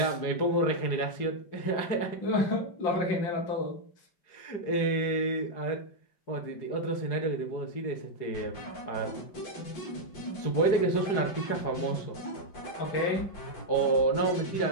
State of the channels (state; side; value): late; right; 4.8 ms